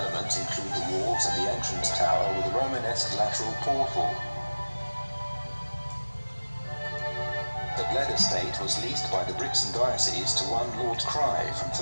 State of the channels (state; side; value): inverted; both; correlation -1.00